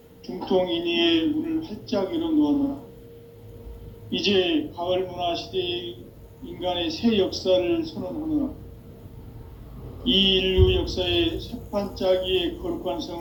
중통인의의 문을 활짝 열어놓아노라. 이제 가을 문화 시대의 인간의 새 역사를 선언하노라. 이 인류 역사의 새판짜기의 거룩한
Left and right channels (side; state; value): both; identical; correlation 1.00